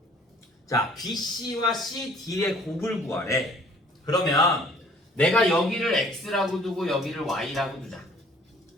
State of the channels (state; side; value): normal; both; correlation 0.55